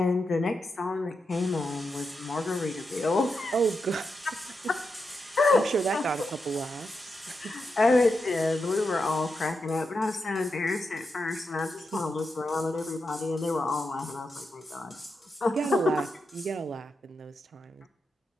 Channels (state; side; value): normal; both; correlation 0.86